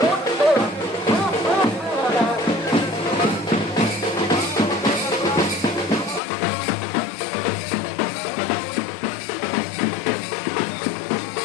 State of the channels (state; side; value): drops out; right; at 6.2 s